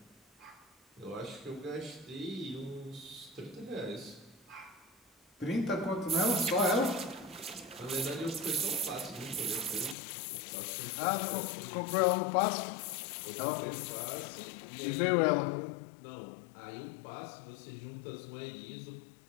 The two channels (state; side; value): drops out; right; at 10.0 s